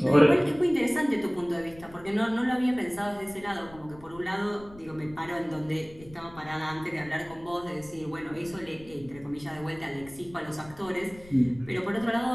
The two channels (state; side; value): noise; left; rumble, 21 dB below the sound